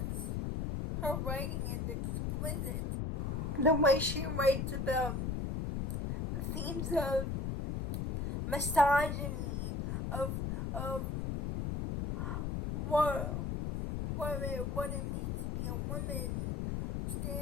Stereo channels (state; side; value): noise; left; rumble, 1 dB below the sound